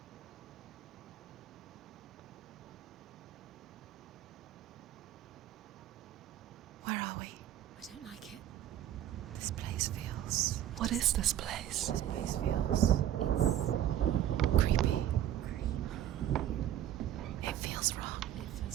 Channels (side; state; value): left; quieter; 11.7 dB